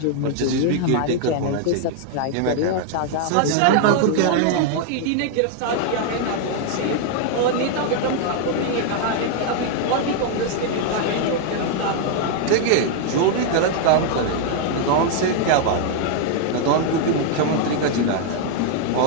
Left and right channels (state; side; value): different; both; correlation 0.00